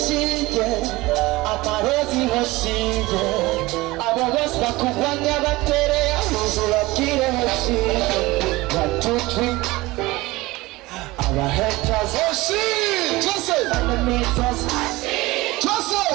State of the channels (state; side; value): quieter; left; 20.4 dB